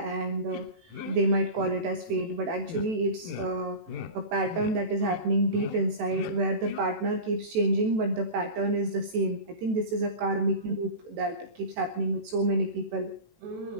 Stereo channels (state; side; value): late; left; 18 ms